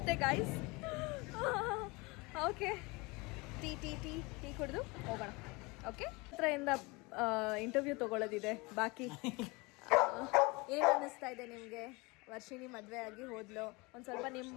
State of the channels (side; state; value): right; quieter; 25.8 dB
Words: ಗಾಯ್ಸ್. ಓಕೆ ಟೀ ಕುಡಿದು ಹೋಗೋಣ. ಓಕೆ ಹತ್ರದಿಂದ ಇಂಟರ್ವ್ಯೂ ತೊಗೊಳ್ಳೋದಿದೆ ಬಾಕಿ. ಏನು ಅನ್ನಿಸ್ತಾ ಇದೆ ನಿಮಗೆ? ವರ್ಷಿಣಿ ಮದುವೆ ಆಗಿ ಹೋದ್ಲು. ಒಂದು ಸ್ವಲ್ಪ